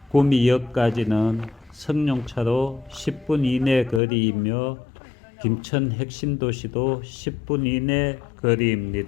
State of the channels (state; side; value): drops out; right; at 4.0 s